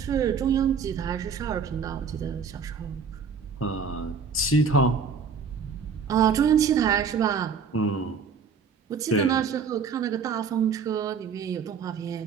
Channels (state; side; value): quieter; left; 5.9 dB